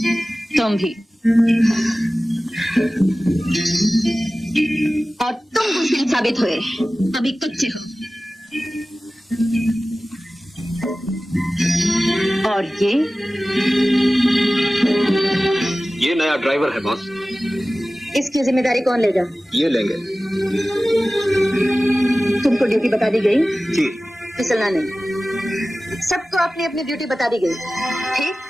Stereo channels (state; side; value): normal; both; correlation 0.96